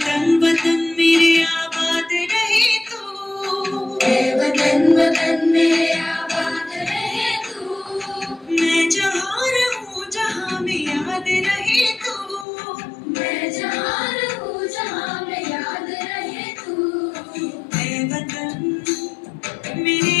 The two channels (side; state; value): right; drops out; at 12.5 s